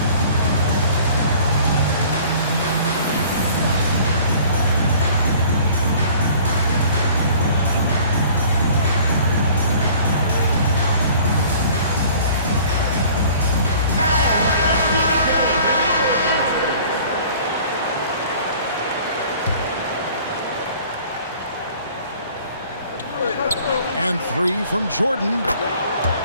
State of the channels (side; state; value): both; inverted; correlation -0.50